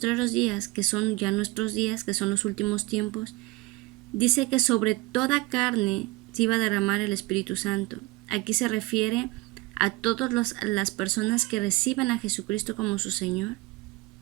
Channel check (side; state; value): left; quieter; 21.1 dB